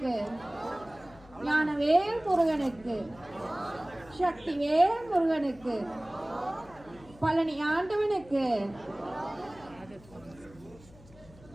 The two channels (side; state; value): left; noise; hum, 22 dB below the sound